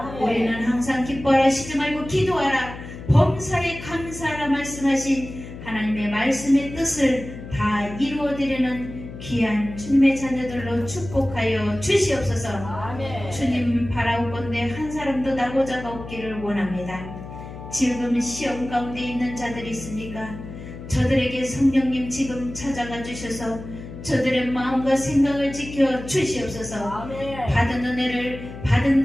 우리는 항상 기뻐하라 쉬지 말고 기도하라 범사에 감사하라 말씀하신 하나님의 말씀의 뜻을 다 이루어드리는 귀한 주님의 자녀들로 축복하여 주시옵소서. 아멘. 주님 바라옵건대 한 사람도 나고자가 없기를 원합니다. 지금 시험 가운데 있는 자들이 있습니까? 저들에게 성령님 지금 찾아가 주셔서 저들의 마음과 생각을 지켜 주시옵소서. 아멘. 받은 은혜를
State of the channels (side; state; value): left; noise; hum, 12 dB below the sound